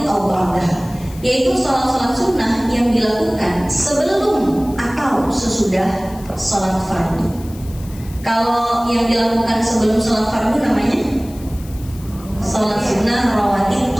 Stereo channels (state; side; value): noise; left; hiss, 21 dB below the sound